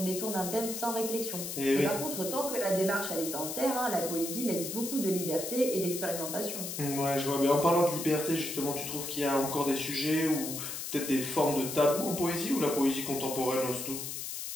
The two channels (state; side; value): noise; left; hiss, 6 dB below the sound